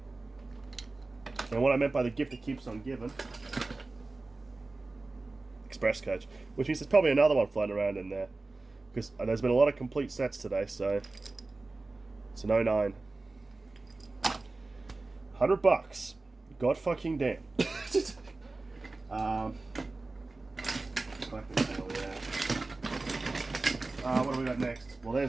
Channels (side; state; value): left; quieter; 3.4 dB